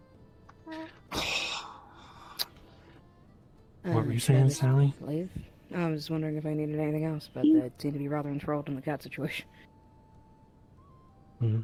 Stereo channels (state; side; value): identical; both; correlation 1.00